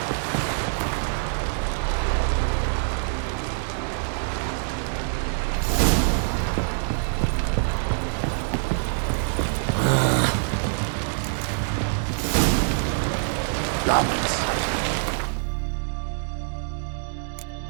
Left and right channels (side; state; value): left; silent; digital silence